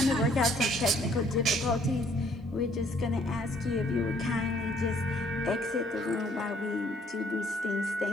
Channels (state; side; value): normal; both; correlation 0.63